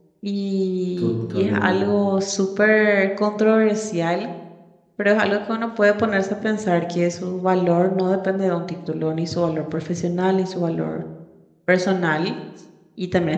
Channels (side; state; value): both; identical; correlation 1.00